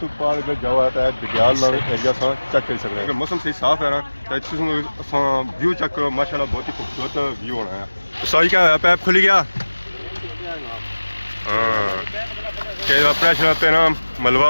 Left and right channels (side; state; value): both; inverted; correlation -1.00